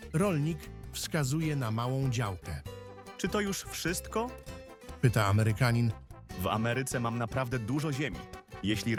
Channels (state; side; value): identical; both; correlation 1.00